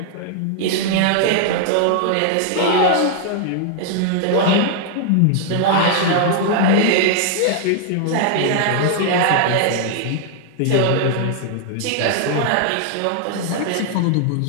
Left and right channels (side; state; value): both; different; correlation 0.00